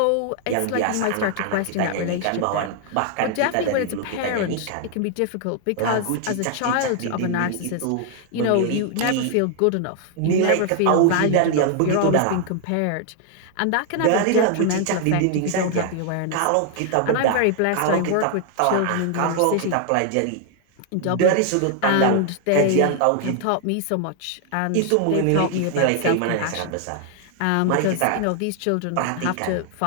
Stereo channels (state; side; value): different; both; correlation 0.00